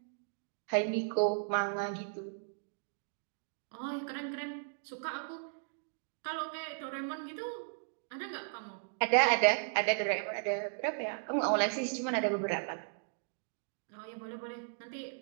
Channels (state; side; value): silent; left; digital silence